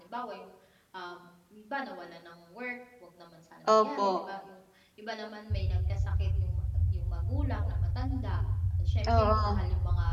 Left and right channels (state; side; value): identical; both; correlation 1.00